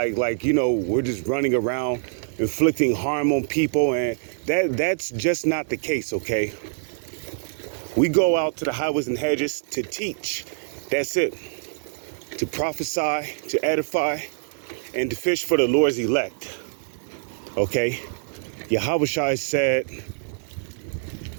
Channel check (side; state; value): left; silent; digital silence